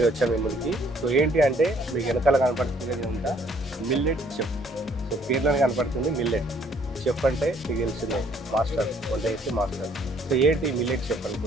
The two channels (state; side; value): normal; both; correlation 0.63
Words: వచ్చాము మీ ముందుకి. సో ఏంటి అంటే మీకు వెనకాల కనపడుతుంది అంతా మిల్లెట్ చెఫ్. సో పేర్లోనే కనపడుతుంది మిల్లెట్ చెఫ్ అంటే మీకు తెలిసిందే, మాస్టర్, వంట చేసే మాస్టర్. సో ఏంటి మిల్లెట్ చెఫ్